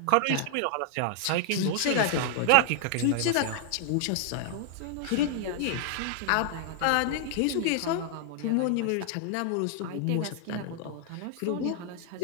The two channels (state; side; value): different; both; correlation 0.00